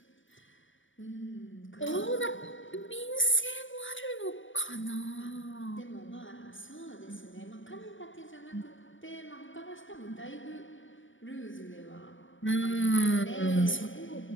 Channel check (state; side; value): late; right; 0.56 ms